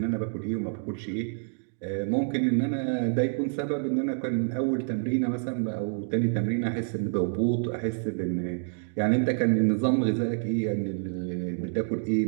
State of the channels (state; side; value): silent; left; digital silence